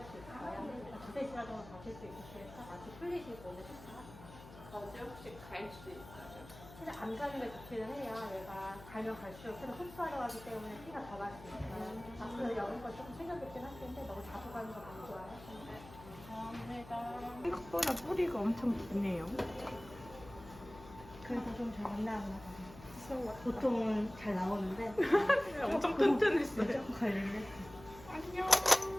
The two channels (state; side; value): noise; left; hum, 17 dB below the sound